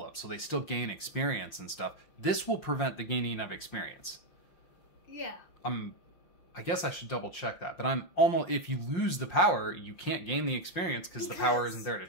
up, so they still gain experience and stuff. This will prevent the gaining of experience. Yeah. I guess I should double check that, but I'm almost, if you lose the power, you can't gain the experience because the power isn't there to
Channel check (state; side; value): late; right; 5.7 ms